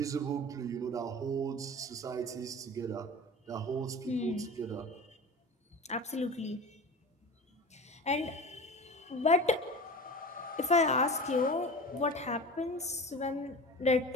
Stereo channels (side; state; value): both; normal; correlation 0.34